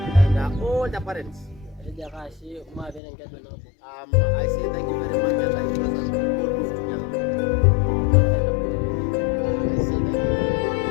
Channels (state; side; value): drops out; right; at 3.0 s